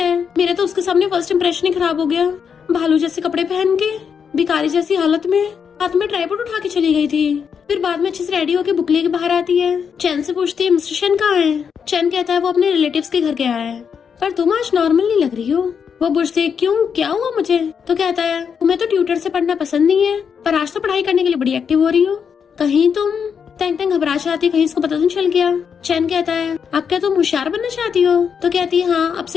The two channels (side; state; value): right; quieter; 6.8 dB